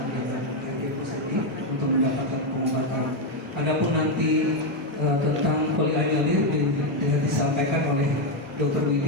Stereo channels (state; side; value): normal; both; correlation 0.05